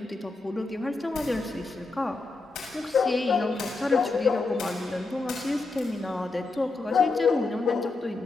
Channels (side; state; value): right; quieter; 3.6 dB